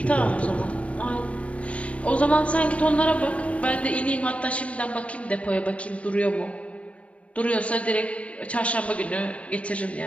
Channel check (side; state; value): right; late; 0.063 ms